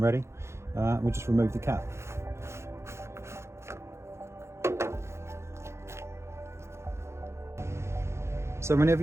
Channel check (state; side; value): late; left; 0.13 ms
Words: ready. We'll just remove the cap. So whenever